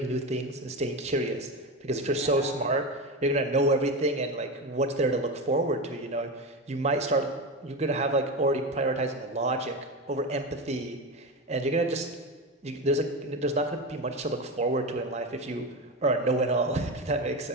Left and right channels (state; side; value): normal; both; correlation 0.20